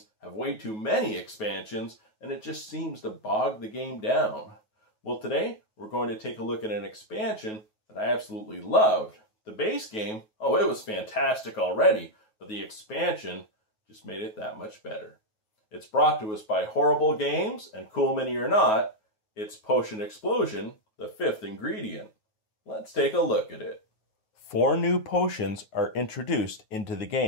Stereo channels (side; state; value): right; late; 9.3 ms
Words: have way too many expansions, and it just seems to bog the game down. Well, today, we're going to take a look at an expansion that I absolutely loved. The base game, oh, it was fantastic already, but the expansion just made it that much better. It's brought to us by Horrible Games, and cool mini or not, it's Potion Explosion, the 5th ingredient. Let's take a look at it. 4 new potions are introduced into the